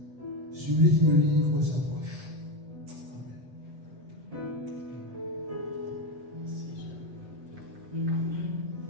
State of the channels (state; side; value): late; left; 7.9 ms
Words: celui qui me livre s'approche.